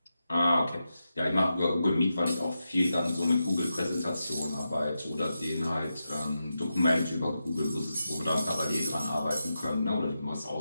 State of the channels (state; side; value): inverted; both; correlation -0.89